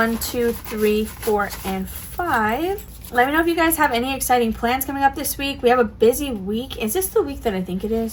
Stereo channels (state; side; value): identical; both; correlation 1.00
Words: 2, 3, 4, and 5. Let me know if you guys have any exciting plans coming up this week. We have a busy week. Is this the week that I think it